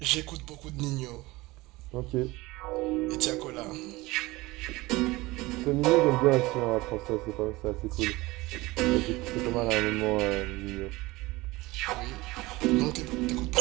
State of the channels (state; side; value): quieter; left; 20.8 dB